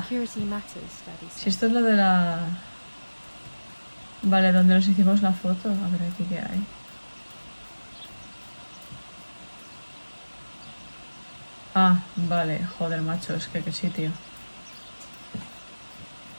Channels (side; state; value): both; inverted; correlation -1.00